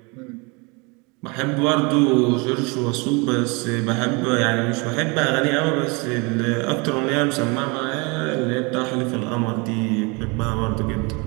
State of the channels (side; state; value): left; quieter; 29.0 dB